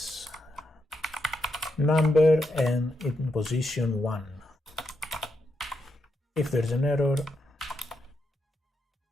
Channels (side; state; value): both; normal; correlation 0.82